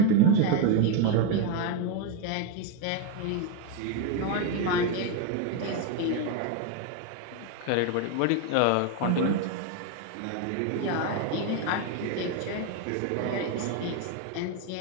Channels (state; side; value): different; both; correlation 0.02